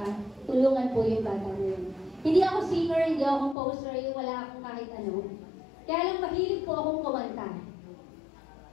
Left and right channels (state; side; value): drops out; right; at 3.6 s